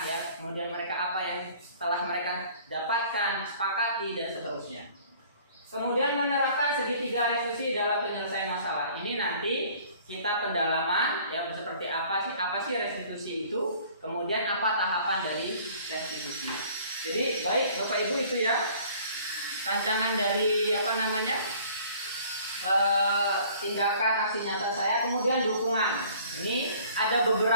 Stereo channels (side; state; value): both; inverted; correlation -0.53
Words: ya, kemudian mereka apa yang telah mereka dapatkan, sepakati, dan seterusnya. Kemudian menerapkan segitiga restitusi dalam penyelesaian masalah. Ini nanti kita pendalaman, ya, seperti apa sih restitusi itu, kemudian apa tahapan dari restitusi. Jadi baik Bapak Ibu, itu ya rancangan dari tindakan aksi nyata saya. Kemudian dukungan. Ini ada